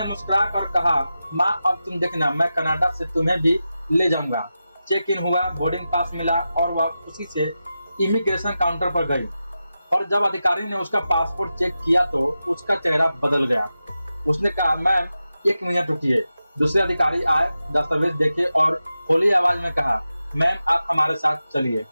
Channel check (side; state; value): both; inverted; correlation -0.92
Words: मुस्कुरा कर कहा, माँ अब तुम देखना, मैं कनाडा से तुम्हें भी ले जाऊंगा। चेक इन हुआ, बोर्डिंग पास मिला और वह खुशी से इमिग्रेशन काउंटर पर गई। और जब अधिकारी ने उसका पासपोर्ट चेक किया तो उसका चेहरा बदल गया। उसने कहा, मैम 1 मिनट रुकिए। दूसरे अधिकारी आए, दस्तावेज देखे और होली आवाज में कहा, मैम आप हमारे साथ चलिए,